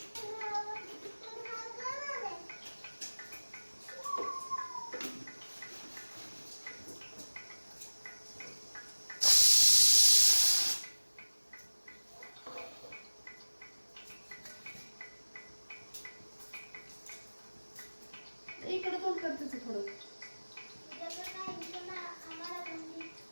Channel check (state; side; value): inverted; both; correlation -1.00